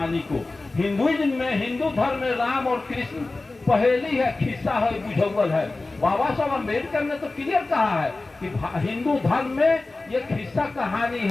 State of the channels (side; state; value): right; quieter; 3.3 dB